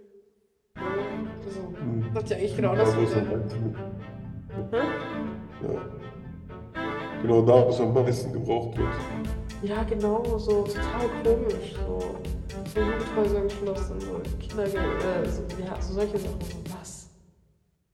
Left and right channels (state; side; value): identical; both; correlation 1.00